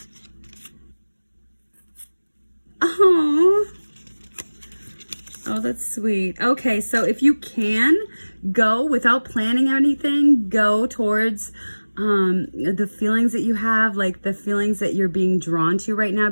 Oh. Oh, that's sweet. Okay, so if you can go without planning anything, go towards the feelings that you have, like the feelings that you're being drawn to right now,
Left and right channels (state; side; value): inverted; both; correlation -1.00